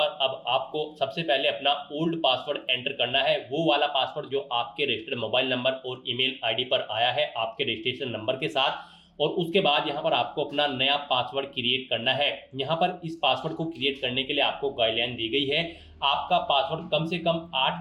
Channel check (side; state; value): both; identical; correlation 1.00